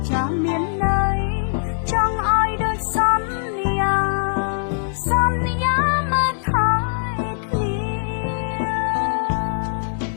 ចាស់មានន័យចង់ឲ្យដូចសន្យាមកថែគ្នា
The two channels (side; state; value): right; silent; 65 dB below the other